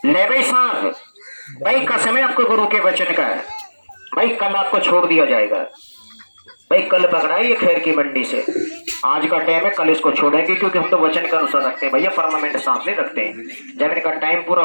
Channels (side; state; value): both; inverted; correlation -1.00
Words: ले भाई सांप, भाई कसम है आपको गुरु के वचन का है, भाई कल आपको छोड़ दिया जाएगा। भाई कल पकड़ा है ये खैर की मंडी से, आज का टाइम है, कल इसको छोड़ेंगे, क्योंकि हम तो वचन के अनुसार रखते हैं भैया, परमानेंट सांप नहीं रखते हैं। जब इनका टाइम पूरा